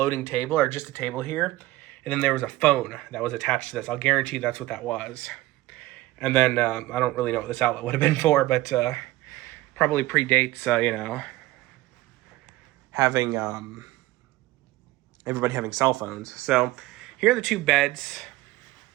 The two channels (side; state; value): left; quieter; 17.8 dB